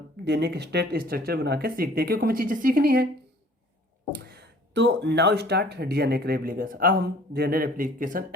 डीएनए के स्टेट स्ट्रक्चर बना के सीखते हैं, क्योंकि हमें चीज़ें सीखनी है। तो नाउ स्टार्ट डीएनए के रेप्लिकेशन। अब हम डीएनए रेप्लिकेशन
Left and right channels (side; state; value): both; normal; correlation 0.53